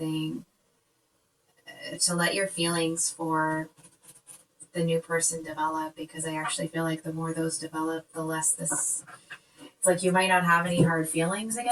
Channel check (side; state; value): both; identical; correlation 1.00